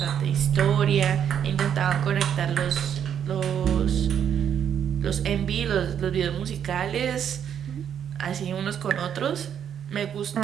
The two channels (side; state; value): left; quieter; 8.8 dB